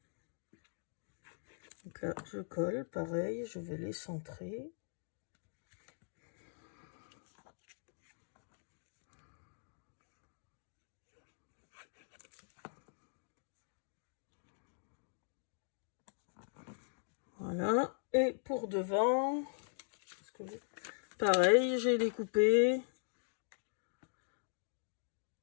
Donc là, je colle, pareil, je vais les centrer. Voilà, et pour devant, pareil, j'ai découpé.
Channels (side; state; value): right; silent; digital silence